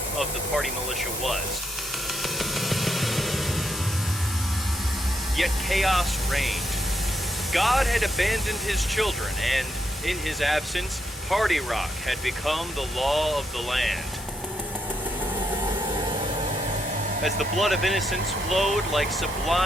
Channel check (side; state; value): both; normal; correlation 0.79